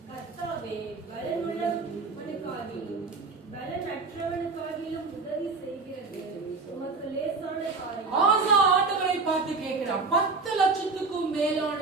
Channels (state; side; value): quieter; left; 4.1 dB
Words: கர்த்தாவே, பலனுள்ளவனுக்காகிலும் பலனற்றவனுக்காகிலும் உதவி செய்கிறது உமக்கு லேசான காரியம். ஆசா ஆண்டவரை பார்த்து கேட்கிறான். 10 லட்சத்துக்கும்